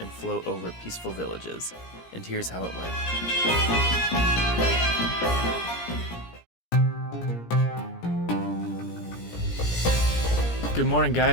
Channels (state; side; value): late; right; 17 ms